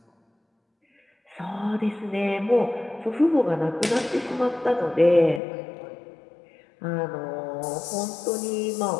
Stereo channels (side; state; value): right; drops out; at 5.4 s